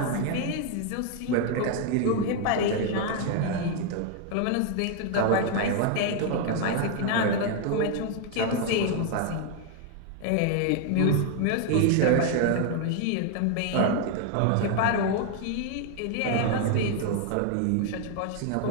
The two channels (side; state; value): both; different; correlation 0.00